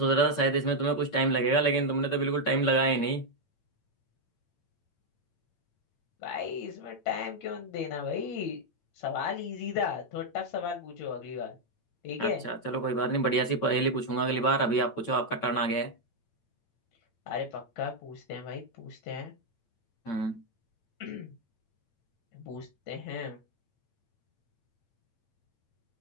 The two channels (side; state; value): right; late; 8.8 ms